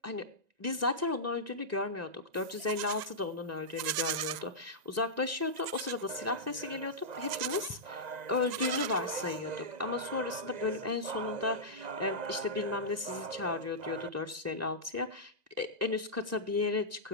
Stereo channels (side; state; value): left; late; 1.9 ms